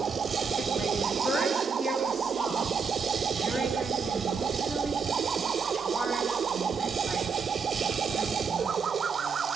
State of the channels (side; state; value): left; quieter; 5.6 dB